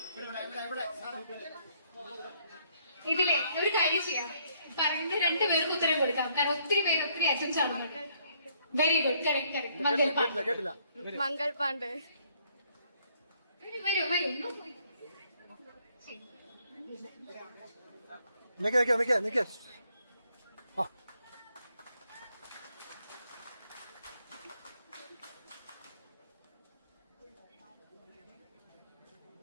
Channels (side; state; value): both; inverted; correlation -0.67